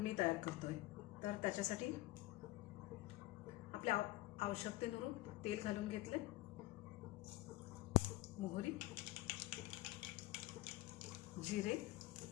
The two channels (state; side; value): quieter; right; 18.5 dB